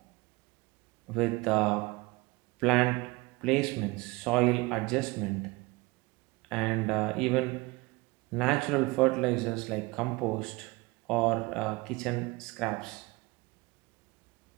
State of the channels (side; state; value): left; quieter; 23.6 dB